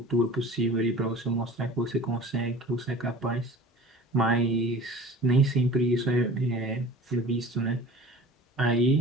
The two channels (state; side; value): normal; both; correlation 0.41